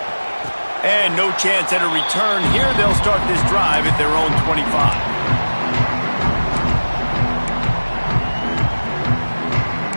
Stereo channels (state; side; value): inverted; both; correlation -1.00